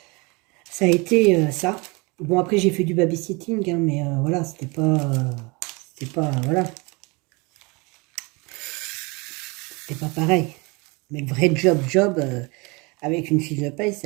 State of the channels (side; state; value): left; quieter; 27.7 dB